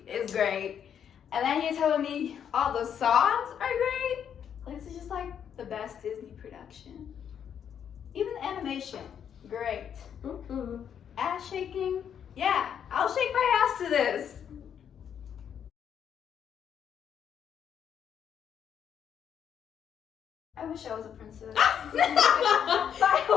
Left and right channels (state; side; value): quieter; right; 8.5 dB